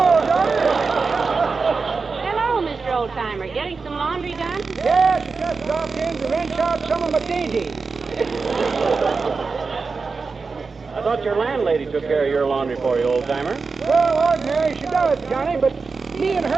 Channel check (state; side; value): quieter; left; 4.6 dB